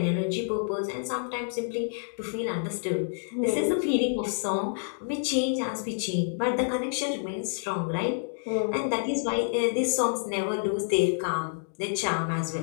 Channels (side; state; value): right; silent; digital silence